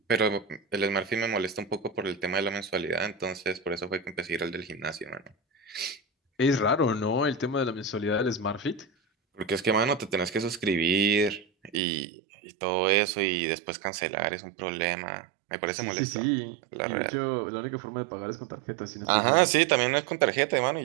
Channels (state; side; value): drops out; left; at 11.8 s